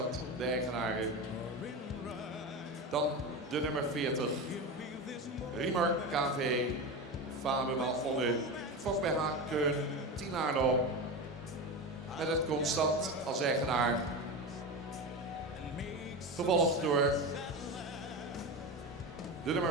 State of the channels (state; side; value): normal; both; correlation 0.22